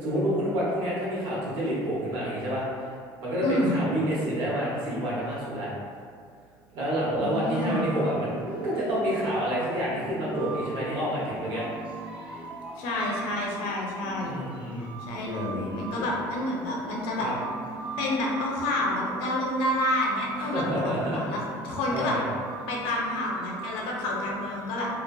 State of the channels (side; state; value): right; noise; hum, 30 dB below the sound